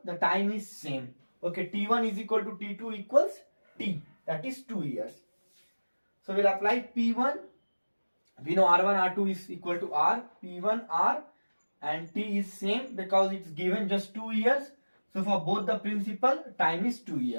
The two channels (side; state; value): both; inverted; correlation -1.00